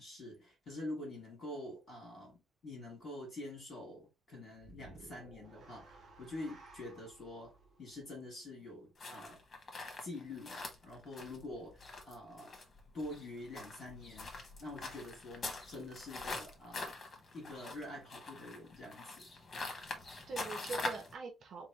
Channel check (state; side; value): normal; both; correlation 0.71